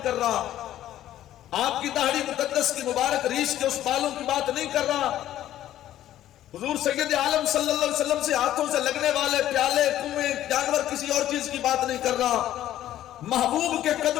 کر رہا، آپ کی داڑھی مقدس کی مبارک ریش کے اس بالوں کی بات نہیں کر رہا، حضور سید عالم صلی اللہ علیہ وسلم سے ہاتھوں سے لگنے والے پیالے، کنویں، جانور، کسی اور چیز کی بات نہیں کر رہا، محبوب کے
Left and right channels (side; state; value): right; quieter; 12.7 dB